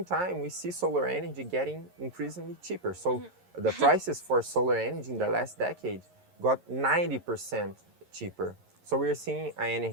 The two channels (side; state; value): left; late; 11 ms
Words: time, we see solar energy getting increasingly cheaper. So the prices for solar energy in the last decade got 90% cheaper. So we are seeing an